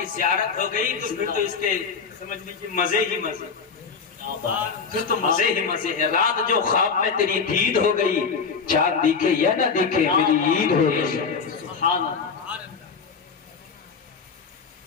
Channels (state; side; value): quieter; right; 5.5 dB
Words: زیارت ہو گئی تو پھر تو اس کے سمجھ لیجیے مزے ہی مزے، پھر تو مزے ہی مزے ہے۔ رات جو خواب میں تیری دید ہو گئی، چاند دیکھے یا نہ دیکھے میری عید ہو گئی۔ سبحان اللہ۔